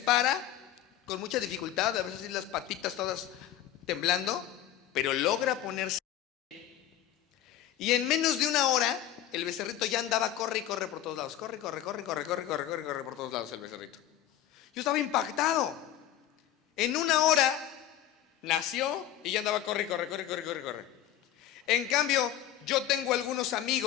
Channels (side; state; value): right; quieter; 11.8 dB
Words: con mucha dificultad, a veces las patitas todas temblando, pero logra ponerse. Y en menos de una hora, el becerrito ya andaba, corre y corre por todos lados. Corre por todos lados el becerrito. Yo estaba impactado. En una hora nació y ya andaba, corre. En cambio, yo tengo algunos